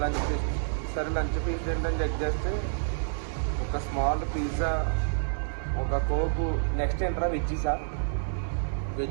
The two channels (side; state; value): left; silent; 59 dB below the other